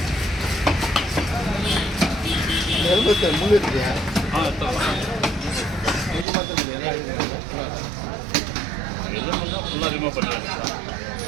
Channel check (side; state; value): left; drops out; at 6.2 s